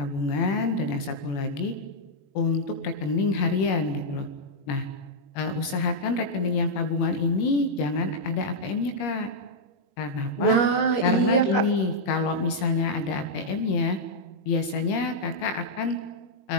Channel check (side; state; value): right; late; 21 ms